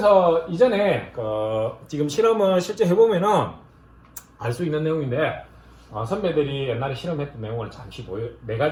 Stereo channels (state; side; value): identical; both; correlation 1.00